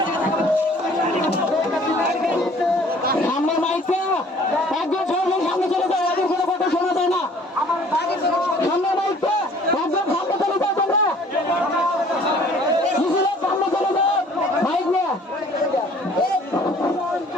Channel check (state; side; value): normal; both; correlation 0.54